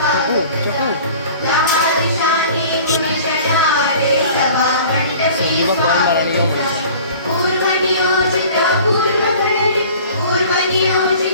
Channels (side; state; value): both; inverted; correlation -0.46